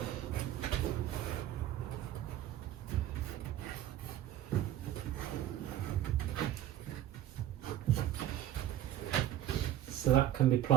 So that can be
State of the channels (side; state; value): left; quieter; 12.5 dB